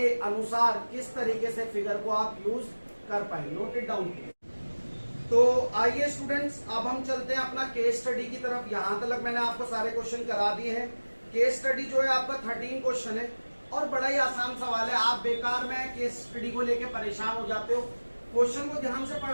अनुसार किस तरीके से फिगर को आप यूज कर पाए। Note it down. तो आइए स्टूडेंट्स, अब हम चलते हैं अपना केस स्टडी की तरफ। यहां तक मैंने आपको सारे क्वेश्चन करा दिए हैं। केस स्टडी जो है आपका 13 क्वेश्चन है और बड़ा ही आसान सवाल है। आप बेकार में केस स्टडी को लेके परेशान हो जाते हो, क्वेश्चन को ध्यान से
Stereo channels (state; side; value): inverted; both; correlation -1.00